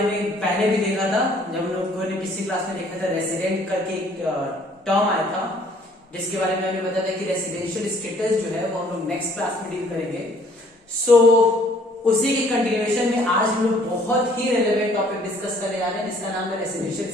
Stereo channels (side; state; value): both; normal; correlation 0.59